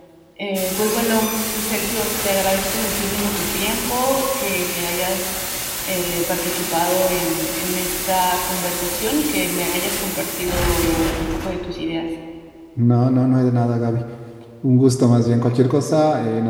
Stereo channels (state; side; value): identical; both; correlation 1.00